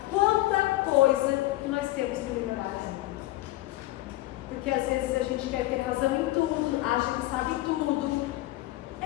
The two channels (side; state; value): right; quieter; 17.4 dB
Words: quanta coisa que nós temos que liberar. Porque às vezes a gente quer ter razão em tudo, acha que sabe tudo.